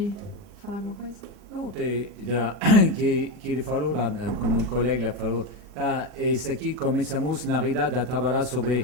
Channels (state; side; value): late; left; 40 ms